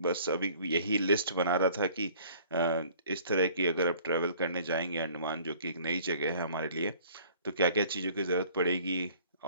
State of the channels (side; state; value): both; inverted; correlation -0.53